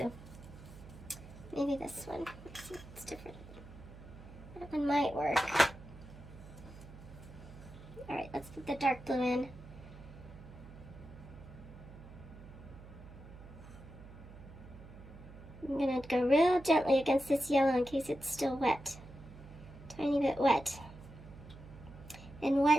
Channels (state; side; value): noise; right; hum, 16 dB below the sound